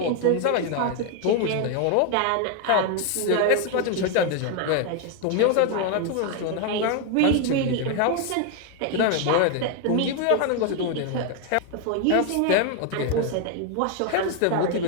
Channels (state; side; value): different; both; correlation 0.01